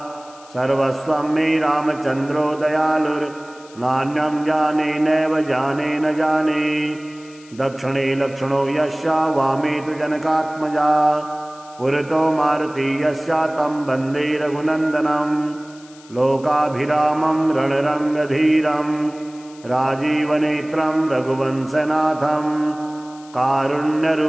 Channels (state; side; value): noise; left; hiss, 24 dB below the sound